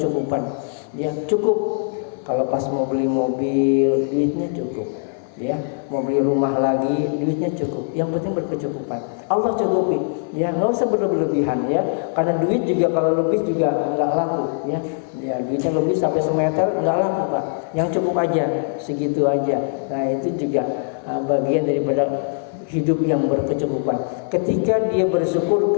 Ya cukup. Kalau pas mau beli mobil, duitnya cukup. Ya mau beli rumah lagi, duitnya cukup. Yang penting berkecukupan. Allah cukupi. Ya nggak usah berlebihan ya. Karena duit juga kalau lebih juga nggak laku. Ya duitnya lebih sampai semeter nggak laku Pak. Yang cukup aja, segitu aja. Nah itu juga bagian daripada hidup yang berkecukupan. Ketika dia bersyukur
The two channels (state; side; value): silent; right; 58 dB below the other